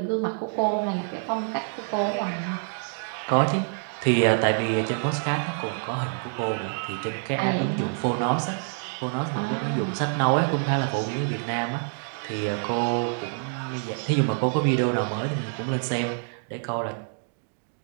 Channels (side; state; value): left; silent; 60 dB below the other